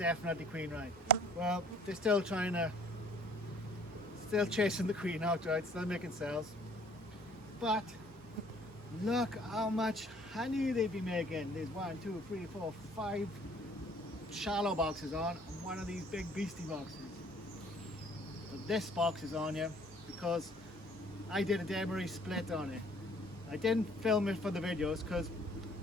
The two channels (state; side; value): normal; both; correlation 0.57